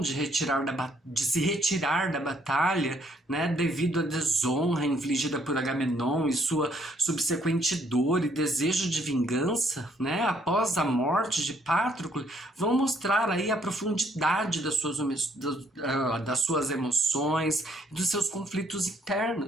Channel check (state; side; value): normal; both; correlation 0.68